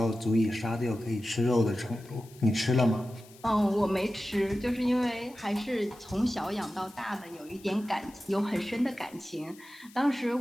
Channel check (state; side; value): noise; left; hiss, 24 dB below the sound